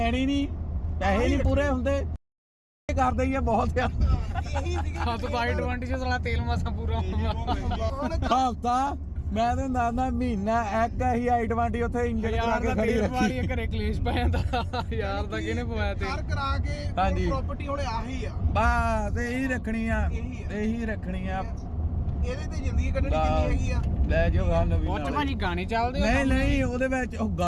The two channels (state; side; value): identical; both; correlation 1.00